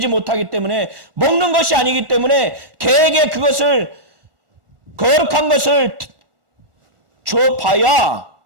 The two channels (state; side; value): late; left; 1.4 ms